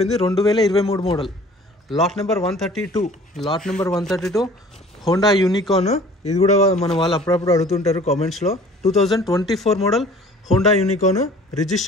2023 model. Lot number 132 Honda Unicorn. ఇది కూడా మన వాళ్ళు అప్పుడప్పుడు అడుగుతుంటారు కామెంట్స్లో. 2024 model Honda Unicorn,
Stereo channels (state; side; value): normal; both; correlation 0.49